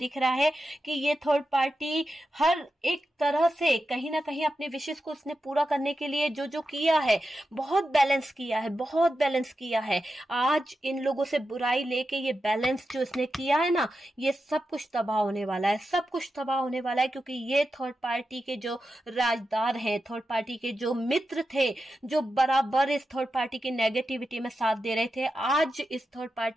रहा है कि ये थर्ड पार्टी हर एक तरह से कहीं ना कहीं अपने विशेष को उसने पूरा करने के लिए जो जो किया है, बहुत बैलेंस किया है, बहुत बैलेंस किया है। आज इन लोगों से बुराई लेके ये बैलेंस जो इसने किया है ना, ये सब कुछ तबाह होने वाला है, सब कुछ तबाह होने वाला है। क्योंकि ये थर्ड पार्टी के जो राजदार हैं, थर्ड पार्टी के जो मित्र थे, जो बराबर इस थर्ड पार्टी की नेगेटिविटी में साथ दे रहे थे, आज इस थर्ड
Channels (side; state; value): both; normal; correlation 0.90